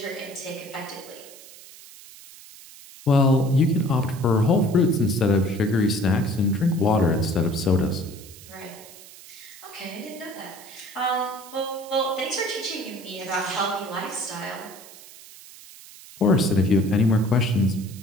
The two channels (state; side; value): noise; right; hiss, 19 dB below the sound